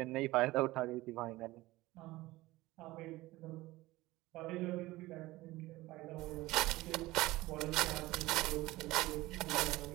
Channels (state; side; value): quieter; left; 18.8 dB